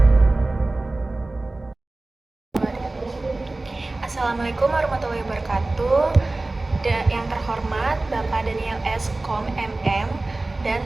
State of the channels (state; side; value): quieter; left; 3.0 dB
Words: warahmatullahi wabarakatuh. Yang terhormat Bapak Daniel S. Kom MM dan